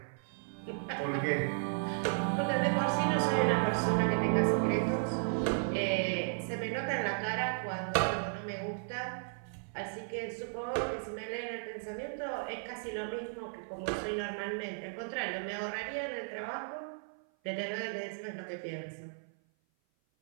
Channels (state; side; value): silent; left; 55 dB below the other